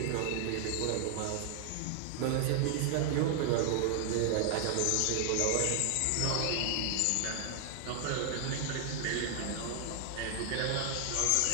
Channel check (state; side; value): different; both; correlation 0.00